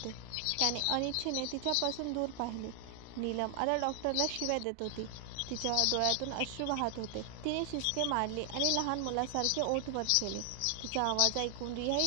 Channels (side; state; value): both; different; correlation 0.00